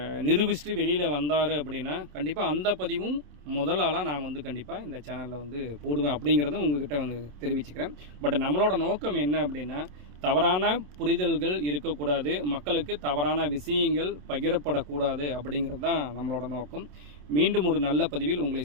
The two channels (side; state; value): left; late; 27 ms